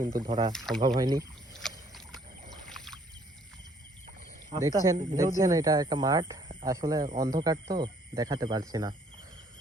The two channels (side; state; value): both; normal; correlation 0.63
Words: ধরা সম্ভব হয়নি। দেখছেন এটা একটা মাঠ, আসলে অন্ধকার তো দেখাতে পারছি না,